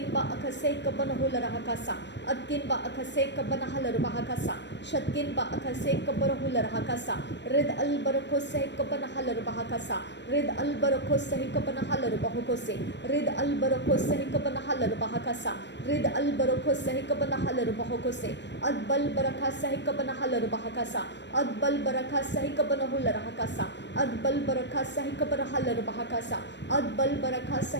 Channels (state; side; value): late; right; 0.51 ms